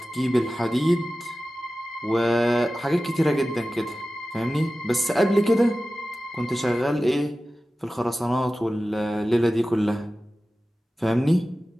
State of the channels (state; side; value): normal; both; correlation 0.95